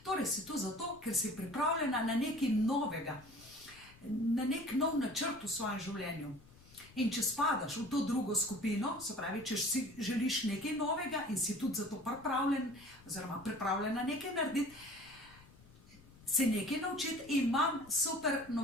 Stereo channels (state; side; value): noise; left; rumble, 23 dB below the sound